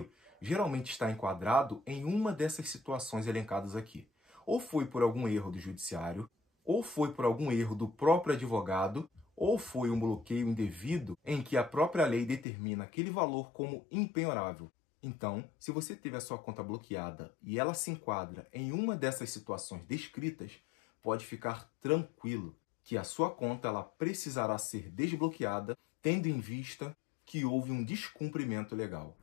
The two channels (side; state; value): right; drops out; at 12.5 s